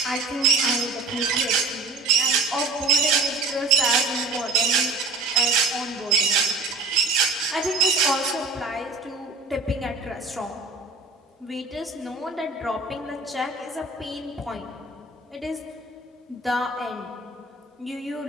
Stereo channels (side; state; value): left; quieter; 3.5 dB